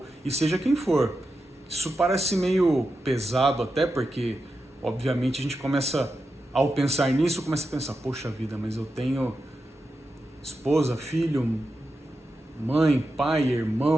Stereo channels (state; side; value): normal; both; correlation 0.89